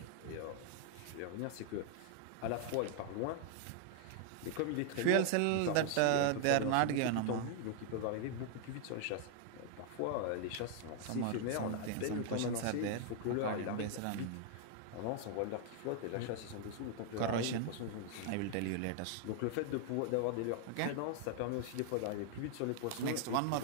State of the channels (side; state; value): both; different; correlation 0.00